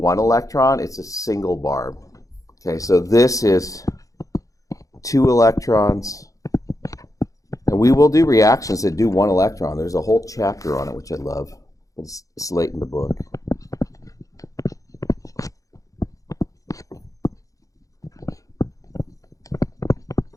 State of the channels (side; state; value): right; late; 0.16 ms